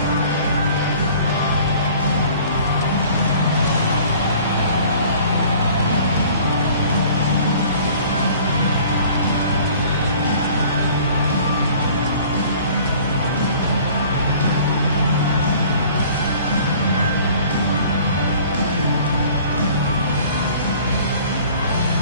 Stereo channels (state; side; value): inverted; both; correlation -0.50